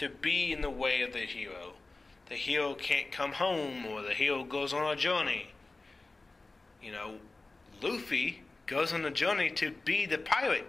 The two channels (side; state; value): right; quieter; 3.4 dB